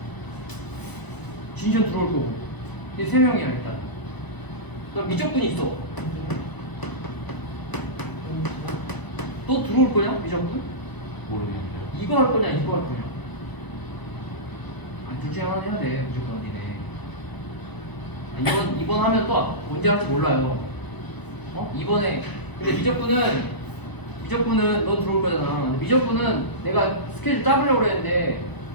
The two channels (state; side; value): late; right; 1.0 ms